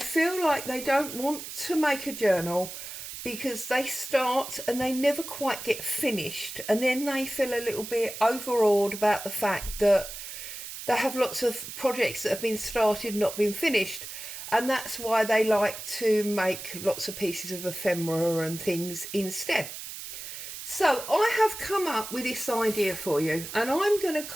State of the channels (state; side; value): noise; right; hiss, 10 dB below the sound